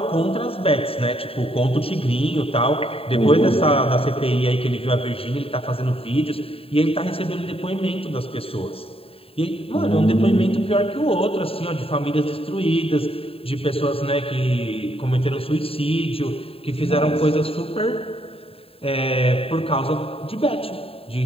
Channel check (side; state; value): right; late; 0.27 ms